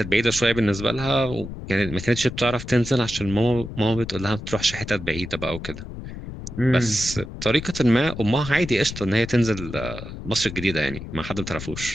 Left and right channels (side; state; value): left; noise; rumble, 10 dB below the sound